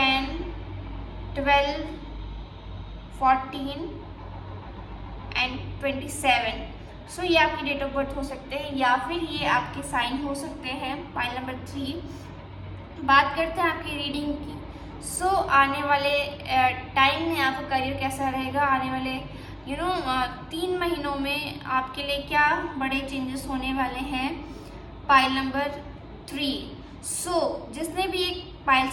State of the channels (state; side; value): identical; both; correlation 1.00